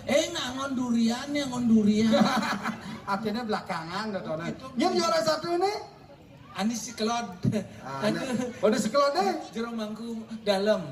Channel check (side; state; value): both; identical; correlation 1.00